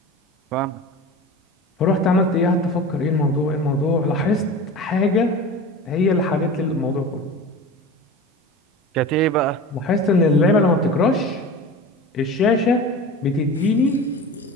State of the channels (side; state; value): both; normal; correlation 0.33